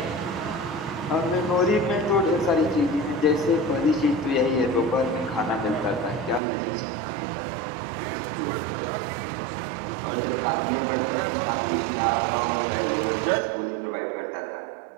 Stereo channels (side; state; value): left; drops out; at 6.4 s